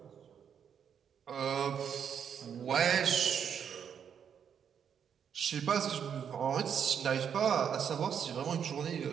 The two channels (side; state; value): left; quieter; 7.9 dB